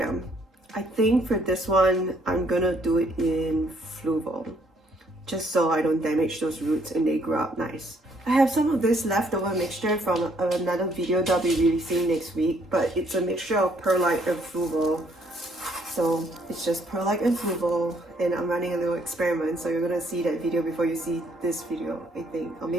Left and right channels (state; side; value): normal; both; correlation 0.66